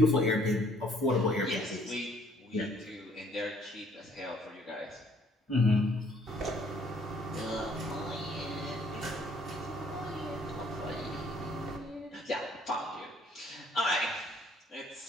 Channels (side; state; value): both; normal; correlation 0.61